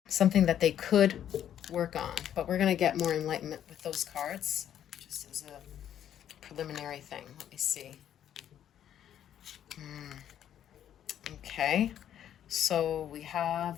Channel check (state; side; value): quieter; right; 10.3 dB